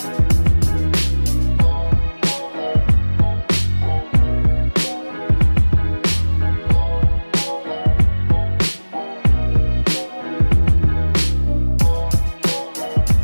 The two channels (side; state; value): both; inverted; correlation -1.00